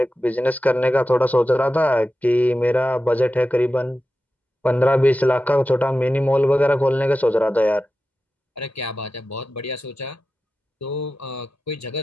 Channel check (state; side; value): normal; both; correlation 0.93